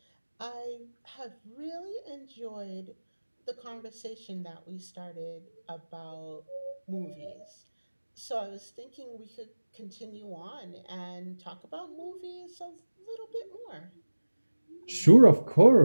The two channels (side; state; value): both; inverted; correlation -1.00